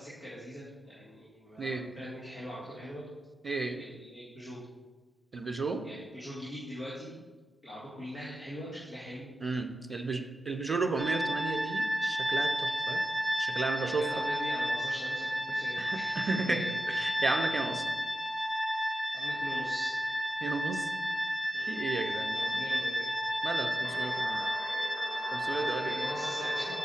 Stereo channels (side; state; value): both; normal; correlation 0.92